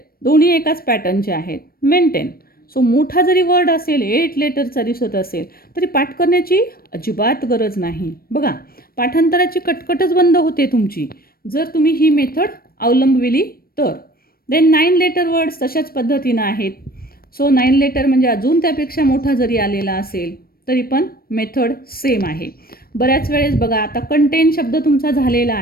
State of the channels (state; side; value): late; right; 0.44 ms